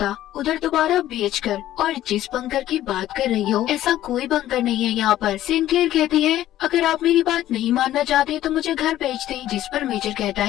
उधर दोबारा भेजकर। और जिस बंकर की बात कर रही हो, ऐसा कोई बंकर नहीं है यहाँ पर। सिनक्लेयर कहती है अगर आप मेरी बात नहीं मानना चाहते तो मुझे घर भेज दें। जिस पर मेजर कहता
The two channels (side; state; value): right; quieter; 13.4 dB